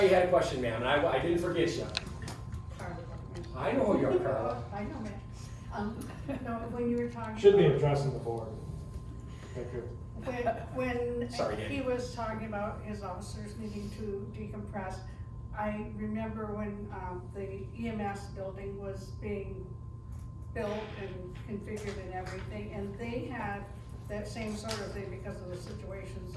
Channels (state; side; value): identical; both; correlation 1.00